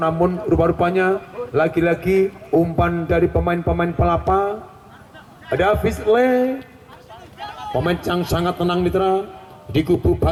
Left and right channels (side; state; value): both; identical; correlation 1.00